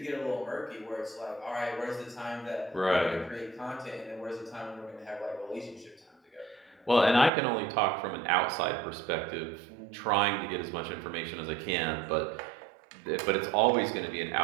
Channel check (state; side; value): drops out; left; at 7.3 s